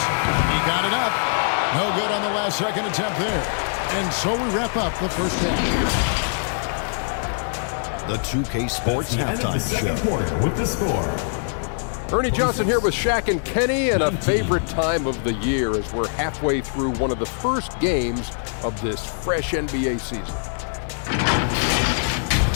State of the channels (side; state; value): right; silent; digital silence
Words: He got it up. No good on the last second attempt there. And so we wrap up the first half. The 2K Sports Halftime Show. Quarter with the score. Ernie Johnson here with Shaq and Kenny, and a favorite time of the year as we're halfway through one of the first games of this fresh NBA season.